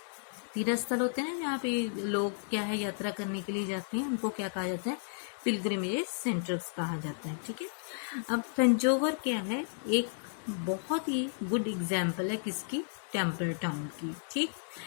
स्थल होते हैं ना, जहाँ पे लोग क्या है यात्रा करने के लिए जाते हैं, उनको क्या कहा जाता है, पिलग्रिमेज सेंटर्स कहा जाता है, ठीक है। अब तंजौर क्या है, एक बहुत ही गुड एग्जाम्पल है किसकी, टेम्पल टाउन की, ठीक।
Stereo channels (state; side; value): silent; right; digital silence